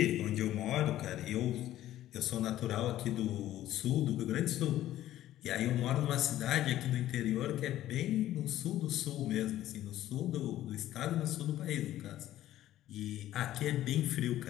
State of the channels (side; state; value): right; quieter; 13.5 dB